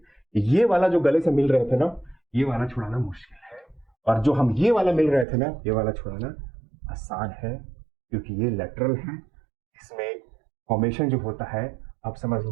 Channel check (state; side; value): drops out; left; at 5.2 s